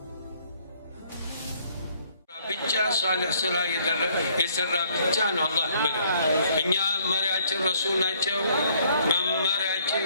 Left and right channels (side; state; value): both; inverted; correlation -0.64